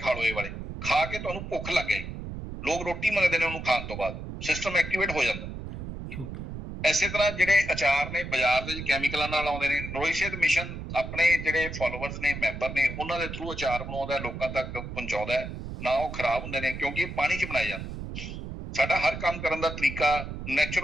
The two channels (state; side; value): noise; right; rumble, 8 dB below the sound